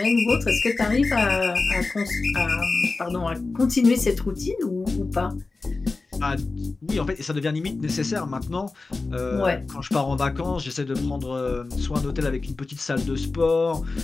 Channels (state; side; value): quieter; right; 3.7 dB